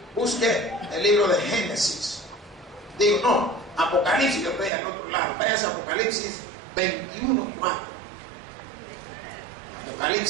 Busque el libro de Génesis. Digo, no, Apocalipsis, yo estoy al otro lado. Vaya a Apocalipsis 21:4.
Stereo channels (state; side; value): drops out; left; at 4.7 s